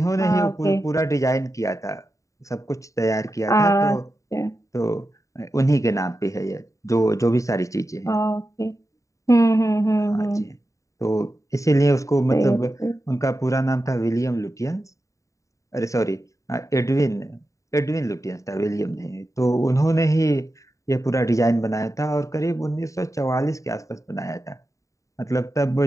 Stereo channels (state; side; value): late; right; 0.16 ms